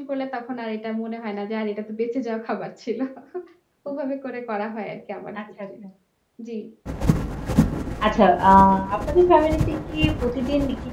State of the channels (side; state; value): both; identical; correlation 1.00